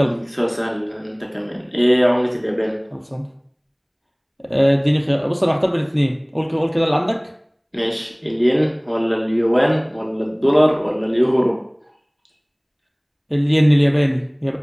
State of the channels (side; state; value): both; identical; correlation 1.00